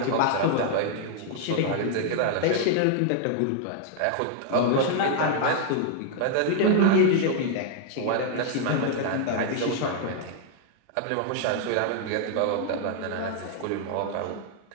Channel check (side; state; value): both; different; correlation 0.00